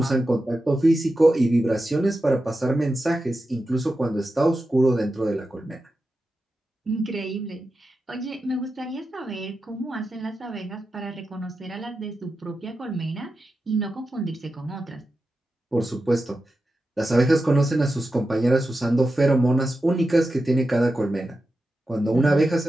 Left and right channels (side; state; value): both; normal; correlation 0.91